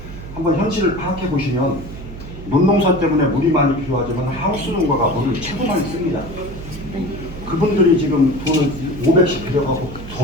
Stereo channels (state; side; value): noise; right; hum, 12 dB below the sound